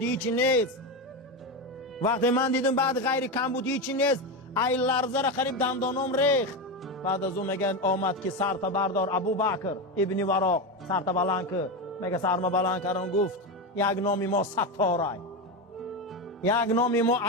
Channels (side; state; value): both; normal; correlation 0.15